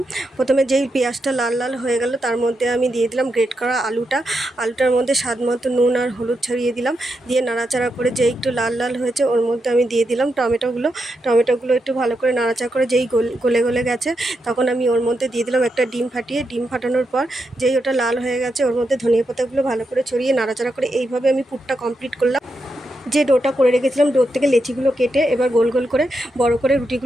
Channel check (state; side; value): normal; both; correlation 0.84